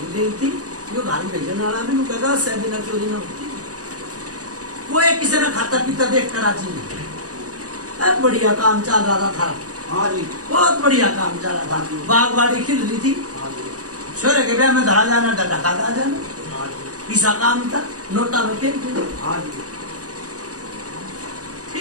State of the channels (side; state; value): left; late; 0.67 ms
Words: गई थी जो घाल भेजने वाला भी कहेगा सैदी ना चोरी ना होती वो एक किसी ने खाता पीता देख कर आज बढ़िया काम चल रहा था हाँ जी बहुत बढ़िया काम चल रहा था बागवाड़ी खिल रही थी छोरे के ब्याह में धरा जाना ढका जाना पीसा काम था नोटा में खेल हाँ जी